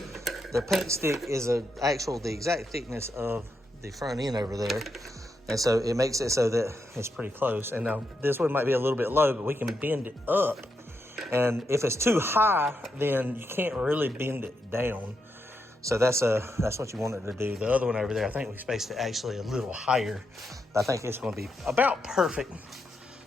The paint stick is the exact thickness of the front end over there, and so it makes it so that it's pretty close. And now this one might be a little bit low, but we can bend it up. And if it's too high, then you can't really bend it down. So that's what you want it to do. The other one over there, I think we spaced it actually a little higher. I think it's going to be about perfect.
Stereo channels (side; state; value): both; normal; correlation 0.83